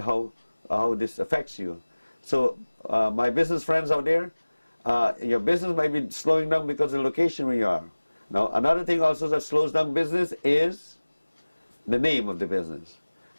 this affects you. So my business friends out there, your business might be slowing down because of the location where you are. Now another thing also that slows down business is the name of the business.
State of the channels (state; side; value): inverted; both; correlation -1.00